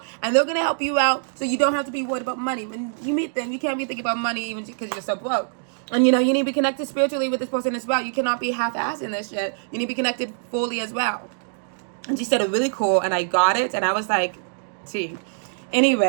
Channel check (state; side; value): silent; left; digital silence